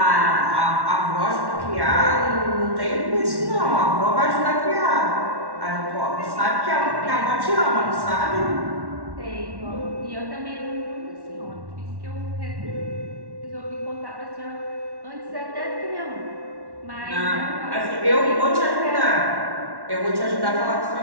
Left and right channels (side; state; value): left; late; 1.1 ms